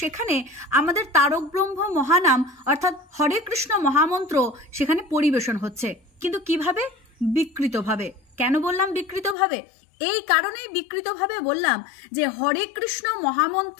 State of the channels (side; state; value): right; drops out; at 9.3 s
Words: সেখানে আমাদের তারক ব্রহ্ম মহানাম অর্থাৎ হরে কৃষ্ণ মহামন্ত্র সেখানে পরিবেশন হচ্ছে। কিন্তু কিভাবে? বিকৃতভাবে। কেন বললাম বিকৃতভাবে? এই কারণেই বিকৃতভাবে বললাম যে হরে কৃষ্ণ